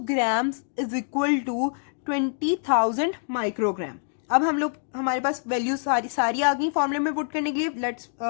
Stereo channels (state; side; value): silent; right; digital silence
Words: grams is equal to 20,000 microgram. अब हम लोग हमारे पास वैल्यू सारी आ गई फॉर्मूले में पुट करने के लिए. Let's